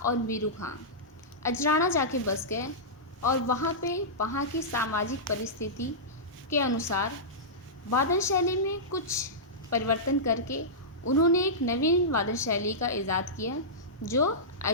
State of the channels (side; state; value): both; normal; correlation -0.15